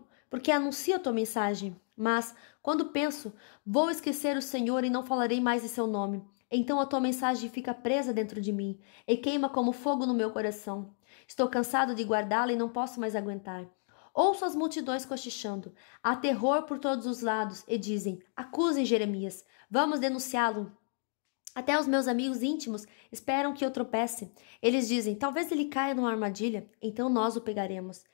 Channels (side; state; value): right; silent; 57 dB below the other